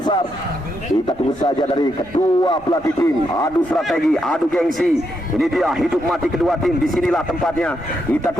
Kita tunggu saja dari kedua pelatih tim. Adu strategi, adu gengsi. Ini dia hidup mati kedua tim. Disinilah tempatnya. Kita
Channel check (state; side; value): normal; both; correlation 0.80